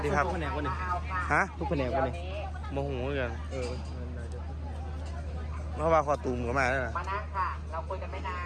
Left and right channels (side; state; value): both; identical; correlation 1.00